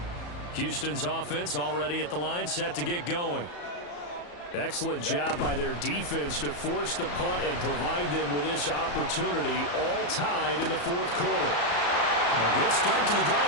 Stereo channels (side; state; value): right; late; 34 ms